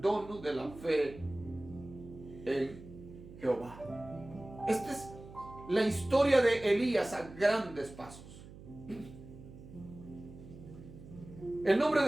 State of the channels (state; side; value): noise; right; hum, 17 dB below the sound